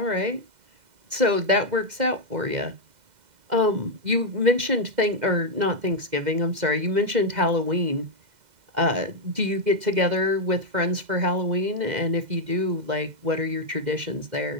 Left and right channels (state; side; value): late; left; 2.0 ms